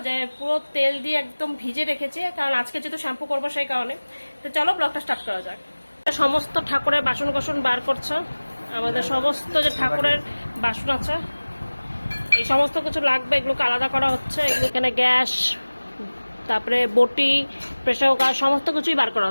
যে পুরো তেল দিয়ে একদম ভিজে রেখেছি, কারণ আজকে যেহেতু শ্যাম্পু করবো সেই কারণে। তো চলো ব্লগটা স্টার্ট করা যাক। সমস্ত ঠাকুরের বাসন কোসন বার করছে, আমাদের সমস্ত যে ঠাকুরের বাসন আছে এই সমস্ত কিছু লাগবে, এগুলোকে আলাদা করা হচ্ছে। এগুলো এখানে গ্যাস, তারপরে বটি, প্রেসার কুকার সমস্ত কিছুই বার করা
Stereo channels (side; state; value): both; inverted; correlation -1.00